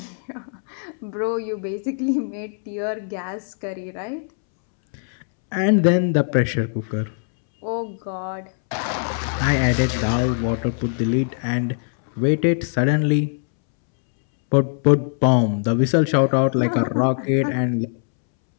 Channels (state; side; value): silent; right; 64 dB below the other